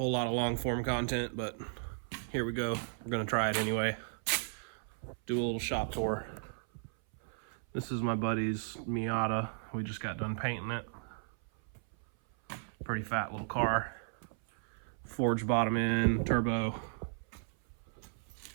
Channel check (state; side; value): silent; left; 54 dB below the other